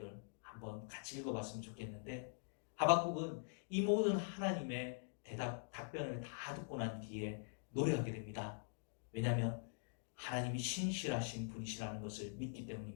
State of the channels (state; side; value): silent; right; digital silence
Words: 한번 같이 읽어봤으면 좋겠는데, 하박국은 이 모든 하나님의 답변을 다 듣고 난 뒤에 노래하게 됩니다. 왜냐하면 하나님이 신실하신 분이시라는 것을 믿기